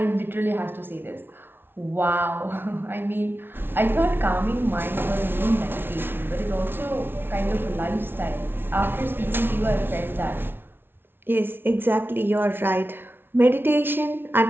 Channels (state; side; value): late; left; 0.11 ms